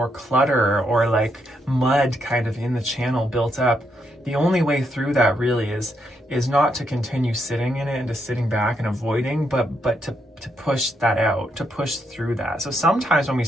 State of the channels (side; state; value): both; normal; correlation 0.79